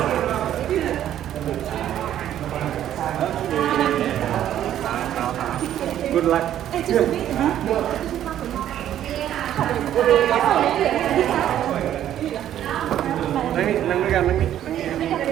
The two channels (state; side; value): quieter; left; 11.3 dB